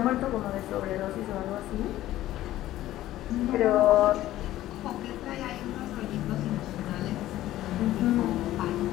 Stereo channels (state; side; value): quieter; right; 14.6 dB